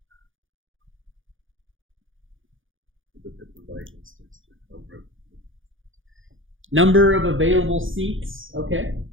Number of available seats. Okay.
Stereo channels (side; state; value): left; late; 0.58 ms